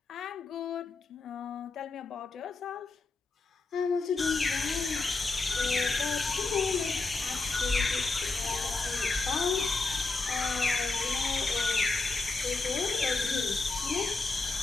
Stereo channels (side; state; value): right; quieter; 3.8 dB